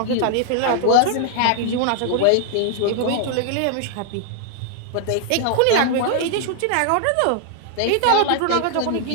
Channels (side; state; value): both; different; correlation 0.00